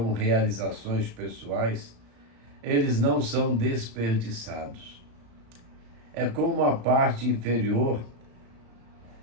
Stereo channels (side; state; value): left; late; 35 ms